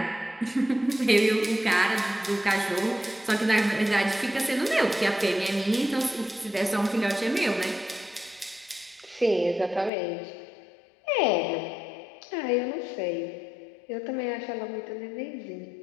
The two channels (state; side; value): drops out; right; at 9.9 s